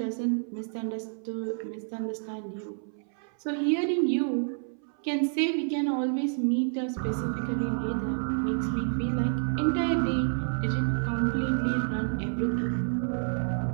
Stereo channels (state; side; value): silent; left; 59 dB below the other